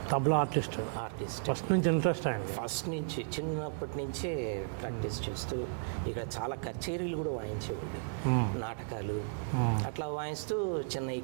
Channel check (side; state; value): left; silent; digital silence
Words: ఆర్టిస్ట్ ఫస్ట్ నుంచి ఇంట్రెస్ట్ ఆయన. ఫస్ట్ నుంచి చిన్నప్పటి నుంచే ప్రాక్టీస్ చేస్తూ ఇక్కడ చాలా కచేరీలు కూడా వాయించేవాళ్ళు, నాటకాలు అట్లా వాయిస్తూ